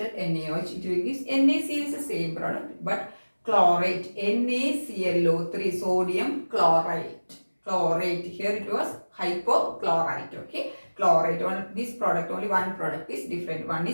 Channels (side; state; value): both; inverted; correlation -1.00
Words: NaOH, it will give NaCl is the same product, but chlorate, NaClO3, sodium chlorite. Chlorate, here it was hypochlorite. Okay, chlorate, this product, only one product is different. One